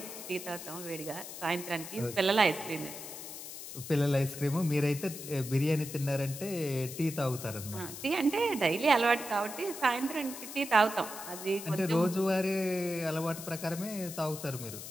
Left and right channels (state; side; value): noise; left; hiss, 10 dB below the sound